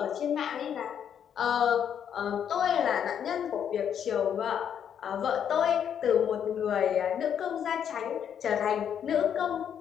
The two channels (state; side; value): quieter; right; 8.6 dB